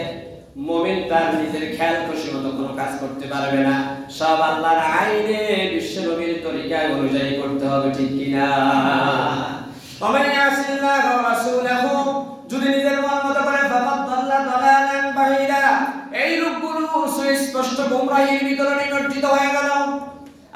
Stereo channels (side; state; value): both; identical; correlation 1.00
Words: মুমিন তার নিজের খেয়াল খুশি মতো কোনো কাজ করতে পারবে না। সব আল্লাহর আইনে বিশ্ব নবীর তরিকা অনুযায়ী করতে হবে, ঠিক কিনা? ওমান ইয়াসিল্লাহ ওয়া রাসূলহু, যদি নিজের মন মতো করে ফাকাদ দাল্লা দালালান বাঈদা, এই লোকগুলো সুস্পষ্ট গোমরাহির ভিতরে নিমজ্জিত হয়ে গেল।